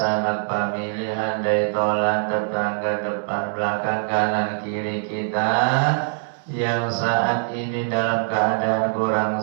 pemilihan, dari tolan, tetangga, depan belakang, kanan kiri kita yang saat ini dalam keadaan kurang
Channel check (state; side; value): silent; left; 64 dB below the other